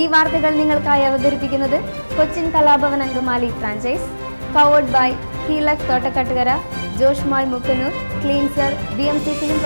വാർത്തകൾ നിങ്ങൾക്കായി അവതരിപ്പിക്കുന്നത് Cochin Kalabhavan Angamaly franchise, powered by ഹീലക് Thottakkattukara, Josh mall Mukkannoor, cleanser, BMC film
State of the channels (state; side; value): inverted; both; correlation -1.00